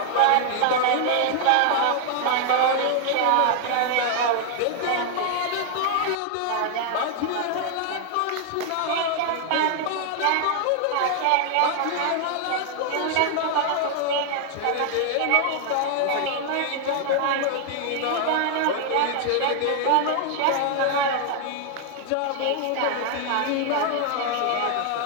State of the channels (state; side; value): different; both; correlation 0.00